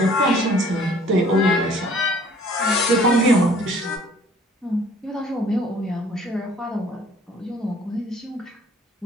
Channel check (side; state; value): both; normal; correlation 0.56